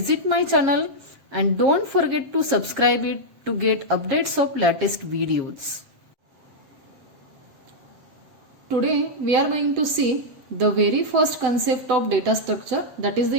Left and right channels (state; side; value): late; left; 7.5 ms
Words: my channel and don't forget to subscribe it to get updates of latest videos. Today we are going to see the very first concept of data structure, that is